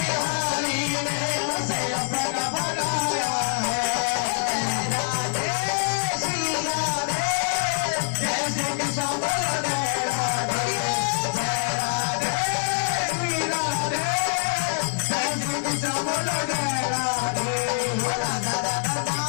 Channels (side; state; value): right; silent; digital silence